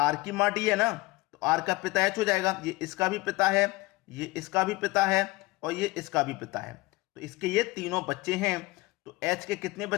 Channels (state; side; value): quieter; right; 21.6 dB